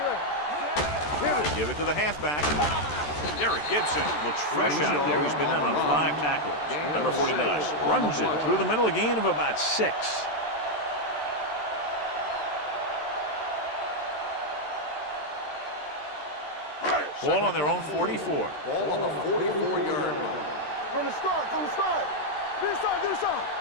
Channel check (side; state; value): right; late; 13 ms